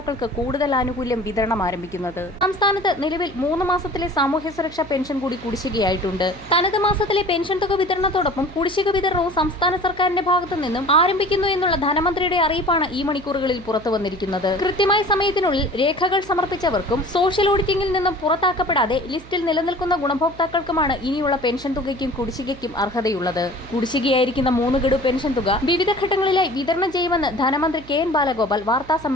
കൂടുതൽ ആനുകൂല്യം വിതരണം ആരംഭിക്കുന്നത്. സംസ്ഥാനത്ത് നിലവിൽ 3 മാസത്തിലെ സാമൂഹ്യ സുരക്ഷാ പെൻഷൻ കൂടി കുടിശ്ശികയായിട്ടുണ്ട്. തനത് മാസത്തിലെ പെൻഷൻ തുക വിതരണത്തോടൊപ്പം കുടിശ്ശിക വിതരണവും സംസ്ഥാന സർക്കാരിന്റെ ഭാഗത്തു നിന്നും ആരംഭിക്കുന്നു എന്നുള്ള ധനമന്ത്രിയുടെ അറിയിപ്പാണ് ഈ മണിക്കൂറുകളിൽ പുറത്തു വന്നിരിക്കുന്നത്. കൃത്യമായ സമയത്തിനുള്ളിൽ രേഖകൾ സമർപ്പിച്ചവർക്കും സോഷ്യൽ ഓഡിറ്റിംഗിൽ നിന്നും പുറത്താക്കപ്പെടാതെ ലിസ്റ്റിൽ നിലനിൽക്കുന്ന ഗുണഭോക്താക്കൾക്കുമാണ് ഇനിയുള്ള പെൻഷൻ തുകയ്ക്കും കുടിശ്ശികയ്ക്കും അർഹതയുള്ളത്. കുടിശ്ശികയായിരിക്കുന്ന 3 ഗഡു പെൻഷൻ തുക വിവിധ ഘട്ടങ്ങളിലായി വിതരണം ചെയ്യുമെന്ന് ധനമന്ത്രി KN ബാലഗോപാൽ വാർത്താ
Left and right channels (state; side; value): noise; right; hum, 19 dB below the sound